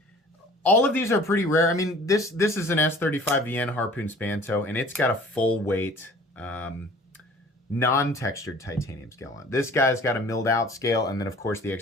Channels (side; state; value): both; normal; correlation 0.49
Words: all of these are pretty rare. I mean, this is an S35VN Harpoon Spanto, and it's got a full weight, non-textured titanium scale on it. This guy's got a milled out scale, and then of course the